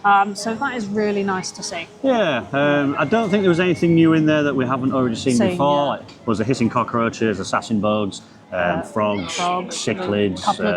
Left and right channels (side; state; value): both; identical; correlation 1.00